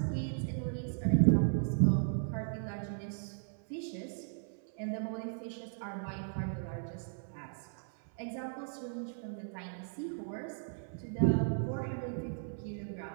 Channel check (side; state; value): left; silent; 54 dB below the other